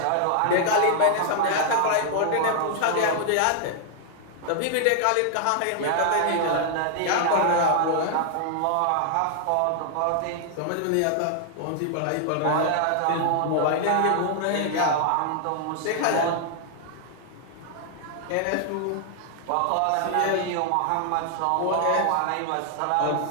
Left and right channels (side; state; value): both; different; correlation 0.00